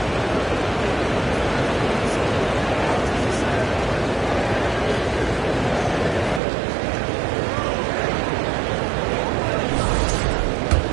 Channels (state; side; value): drops out; left; at 6.4 s